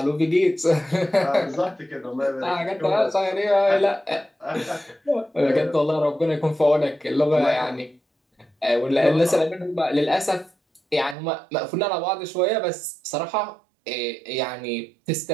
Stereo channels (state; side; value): drops out; left; at 11.2 s